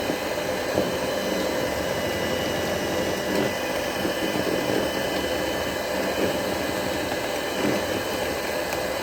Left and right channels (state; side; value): identical; both; correlation 1.00